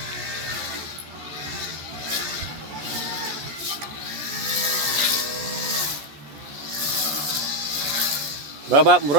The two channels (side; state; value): left; late; 14 ms